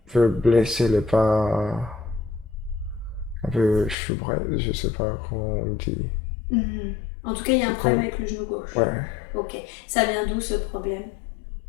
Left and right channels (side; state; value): right; drops out; at 4.0 s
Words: peu blessée, elle est pas... Un peu choubrette, je sais pas comment on dit. Mhm. En tout cas, il y a un C'est problème comme... avec le genou gauche. Ouais, Ok. Ça vient d'où ce problème?